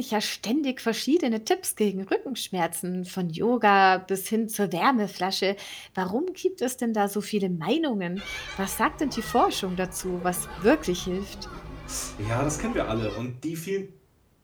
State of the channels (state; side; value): identical; both; correlation 1.00